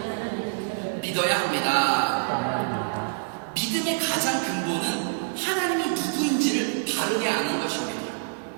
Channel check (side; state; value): left; silent; digital silence